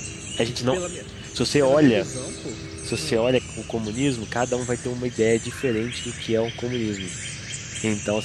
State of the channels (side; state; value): both; identical; correlation 1.00